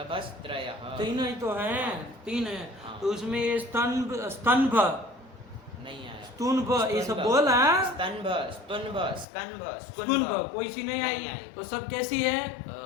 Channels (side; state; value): right; drops out; at 9.2 s